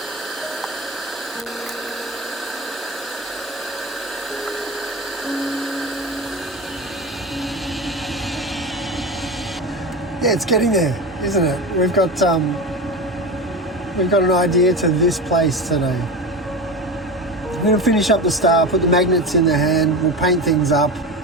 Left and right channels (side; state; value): both; normal; correlation 0.25